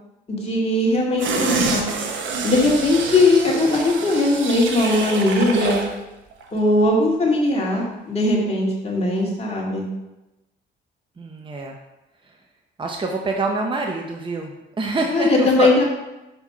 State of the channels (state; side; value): normal; both; correlation 0.53